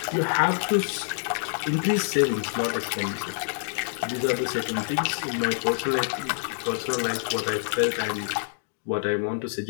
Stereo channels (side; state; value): right; silent; digital silence